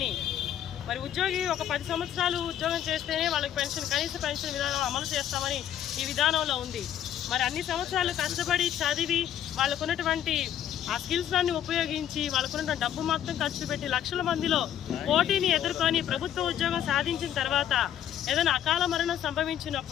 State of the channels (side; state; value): right; quieter; 10.6 dB